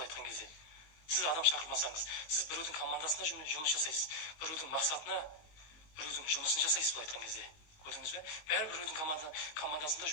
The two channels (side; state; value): right; late; 19 ms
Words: айтқан кезде. Сіз адам шақырмасаңыз, сіз біреудің командасында жұмыс жасайсыз. Біреудің мақсатына, біреудің жұмысын жасайсыз бұл айтқан кезде. Көрдіңіз бе? Бәрі біреудің командасында